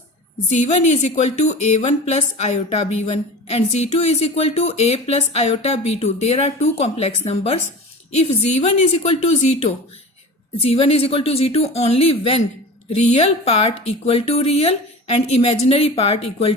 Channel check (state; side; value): normal; both; correlation 0.34